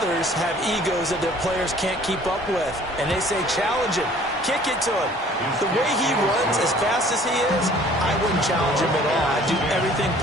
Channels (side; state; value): both; normal; correlation 0.53